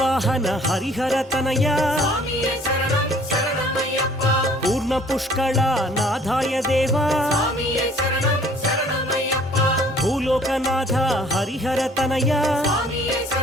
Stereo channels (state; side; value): normal; both; correlation 0.56